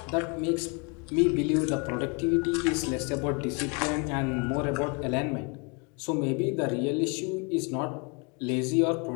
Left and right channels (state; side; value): quieter; right; 32.6 dB